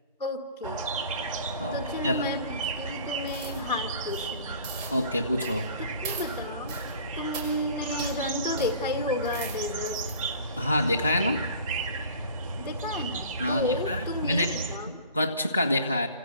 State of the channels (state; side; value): inverted; both; correlation -0.46